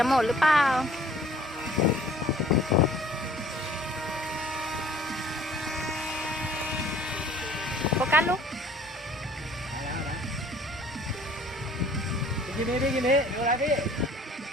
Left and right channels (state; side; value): normal; both; correlation 0.54